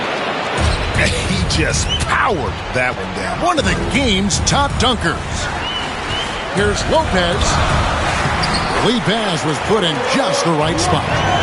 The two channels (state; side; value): identical; both; correlation 1.00